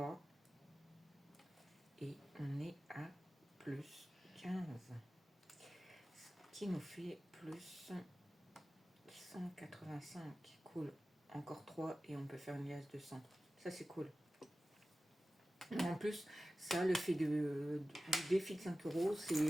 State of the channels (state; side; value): normal; both; correlation 0.95